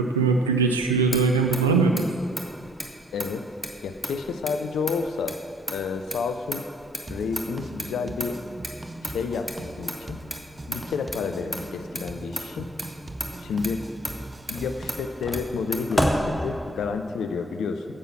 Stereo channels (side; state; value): both; normal; correlation 0.57